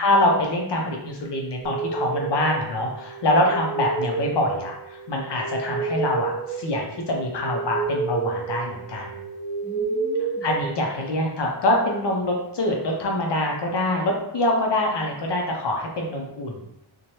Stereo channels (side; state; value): both; normal; correlation 0.06